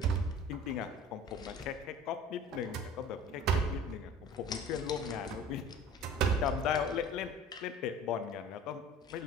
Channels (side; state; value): both; normal; correlation 0.43